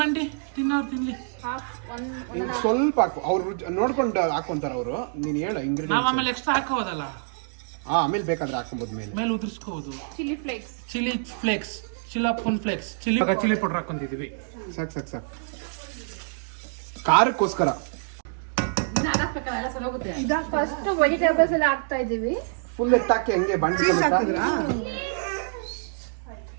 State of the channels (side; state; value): left; silent; digital silence